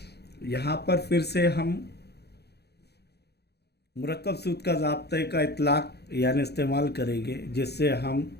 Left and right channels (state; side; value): late; right; 0.48 ms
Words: यहाँ पर फिर से हम मुरक्कब सूद का ज़ाब्ते का इतलाक़ यानी इस्तेमाल करेंगे, जिससे हम